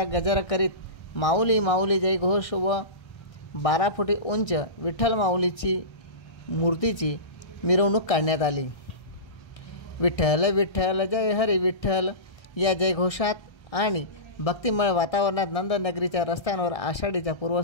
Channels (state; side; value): late; right; 1.3 ms